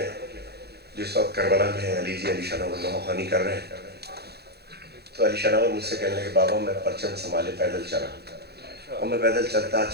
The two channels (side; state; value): left; late; 0.47 ms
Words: جس وقت کربلا میں ہے، علی جی علی شناور نوخانی کر رہے ہیں، تو علی شناور مجھ سے کہنے لگے بابا میں پرچم سنبھالے پیدل چلا، اور میں پیدل